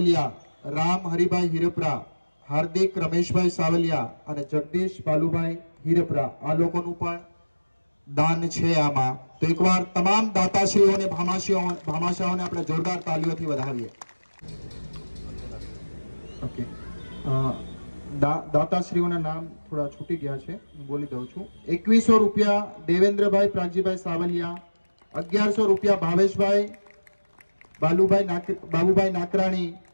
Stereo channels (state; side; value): inverted; both; correlation -1.00